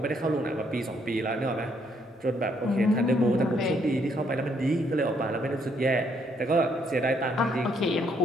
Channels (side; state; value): both; normal; correlation 0.71